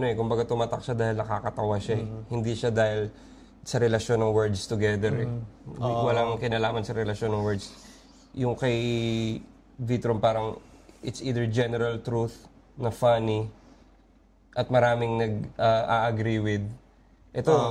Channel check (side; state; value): both; identical; correlation 1.00